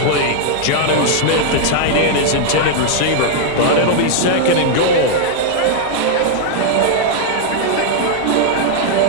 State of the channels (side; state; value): both; different; correlation 0.00